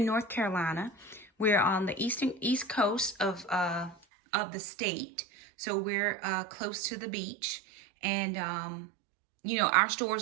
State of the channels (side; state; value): left; drops out; at 4.0 s